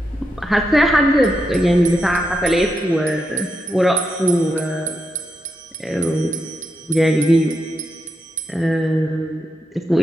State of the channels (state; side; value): normal; both; correlation 0.84